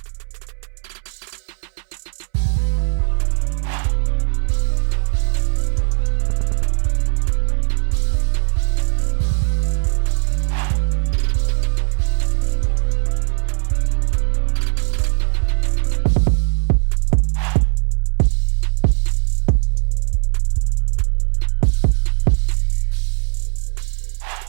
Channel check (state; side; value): silent; left; 67 dB below the other